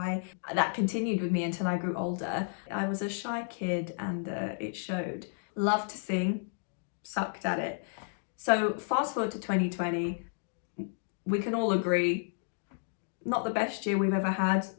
That continued with me until I grew older. I was a shy kid and it showed. Loved to sing, sucked at it. So fast forward to 2020, we can all agree, not the best year we've ever had,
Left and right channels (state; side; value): silent; right; digital silence